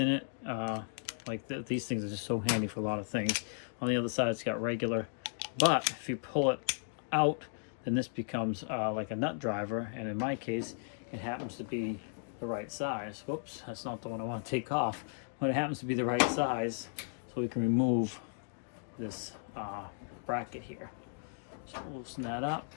it. These things are just so handy for a lot of things. On the other side it's got regular, but if you pull it out, then this becomes like a nut driver, and in my case it happens to be the right size. Whoops, that's not the one I want to take off, but it happens to be the right size, so we can remove this bracket here. So loosen that up,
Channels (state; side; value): silent; right; digital silence